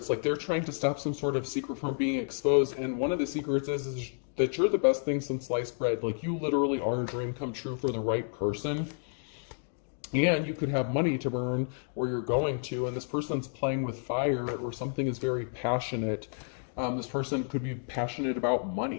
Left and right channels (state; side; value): silent; right; 57 dB below the other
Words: like they're trying to stop some sort of secret from being exposed, and one of the secrets is that you're the best thing since sliced bread. Like, you literally are a dream come true for the right person, and you could have money to burn where you're going to, and this person's playing with fire, or something is very passionate. This person could be passionate about